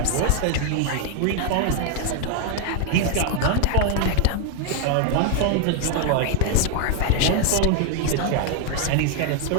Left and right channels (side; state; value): both; different; correlation 0.00